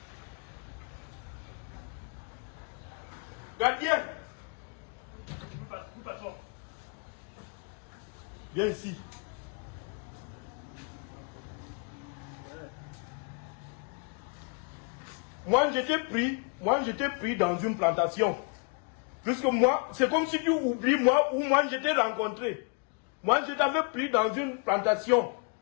Gardien. Viens ici. Moi, j'étais pris dans une plantation. Puisque moi, c'est comme si tu oublies moi où moi j'étais rencontré. Moi, je t'avais pris dans une plantation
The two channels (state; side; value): quieter; right; 37.2 dB